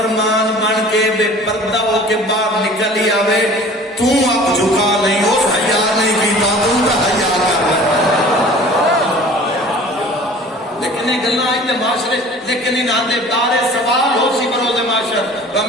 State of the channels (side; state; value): both; normal; correlation 0.46